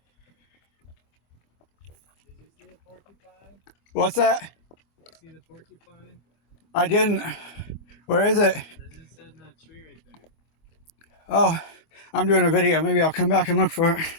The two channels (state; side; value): late; right; 25 ms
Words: see the porcupine? What's that? Did you see the porcupine? I didn't. Where is it? It's just in that tree right there. Oh, I'm doing a video. Maybe I'll come back and look for it.